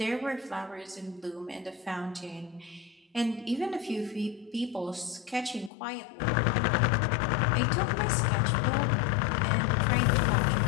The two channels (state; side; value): drops out; right; at 5.7 s